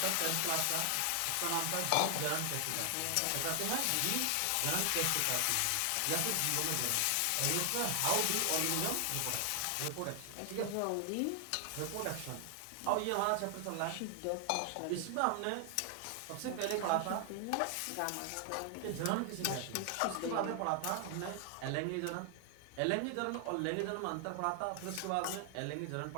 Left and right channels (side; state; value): both; different; correlation 0.00